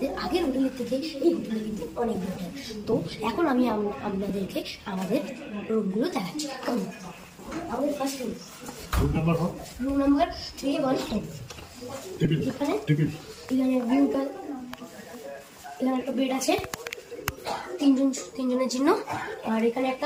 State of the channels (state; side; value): identical; both; correlation 1.00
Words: আগের হোটেলের থেকে এই হোটেলে কিন্তু অনেক বেটার। তো এখন আমি আপনাদেরকে আমাদের রুমগুলো দেখাচ্ছি। আমাদের ফার্স্ট রুম নাম্বার 314। এখানে ভিউটা, এখানে একটা বেড আছে তিনজনের জন্য। আর এখানে